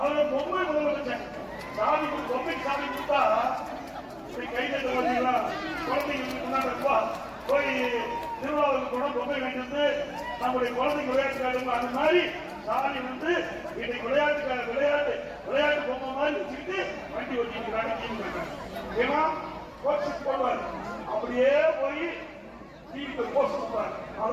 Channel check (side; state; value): both; identical; correlation 1.00